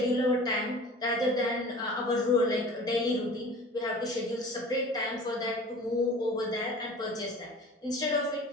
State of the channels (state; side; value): normal; both; correlation 0.42